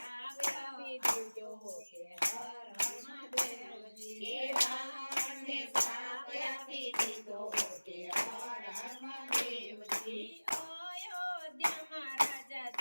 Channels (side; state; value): both; inverted; correlation -1.00